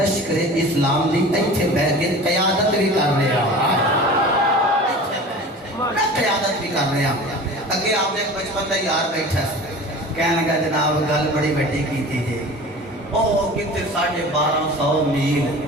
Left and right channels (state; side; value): normal; both; correlation 0.38